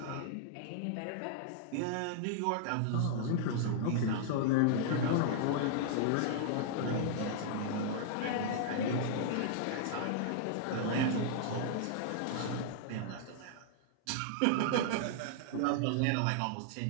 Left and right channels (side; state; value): both; different; correlation -0.01